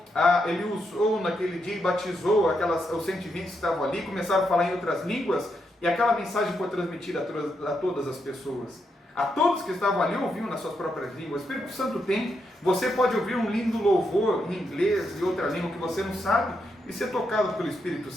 ele usou naquele dia e batizou os 120 que estavam ali, começaram a falar em outras línguas, e aquela mensagem foi transmitida a todas as pessoas. A todos que estavam ali ouviam nas suas próprias línguas. O Espírito Santo tem. Você pode ouvir um lindo louvor em inglês e outra língua que você não sabe e ser tocado pelo Espírito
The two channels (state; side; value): normal; both; correlation 0.81